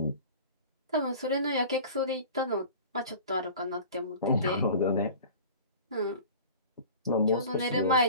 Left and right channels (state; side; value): inverted; both; correlation -0.41